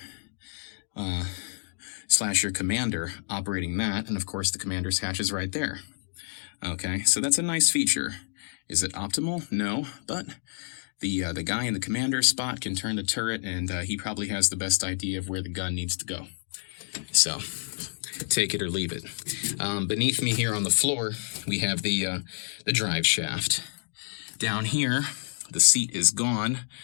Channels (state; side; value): silent; right; digital silence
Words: / your commander operating that, and of course the commander's hatch is right there. Okay, so that's a nice feature. Is it optimal? No, but the guy in the commander's spot can turn the turret, and he probably has the best idea of where the gun needs to go. So, take it or leave it. Beneath me here on the floor, we have the drive shaft. Down here, the seat is gone,